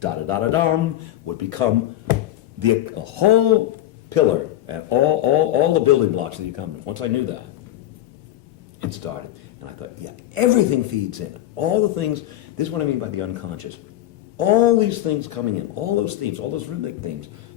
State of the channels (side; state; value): right; quieter; 13.7 dB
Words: would become the a whole pillar and all the building blocks of the accompaniment, once I knew that, it started. And I thought, yeah, everything feeds in. All the things, this is what I mean by the unconscious. All these things coming in, all those themes, all those rhythmic themes,